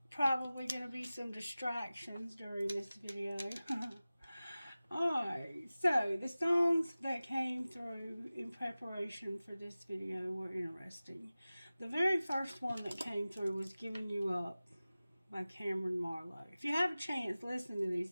Probably going to be some distractions during this video. Alright, so the songs that came through in preparation for this video were interesting. The very first one that came through was Giving You Up by Cameron Marlowe. If you have a chance, listen to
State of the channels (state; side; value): inverted; both; correlation -0.97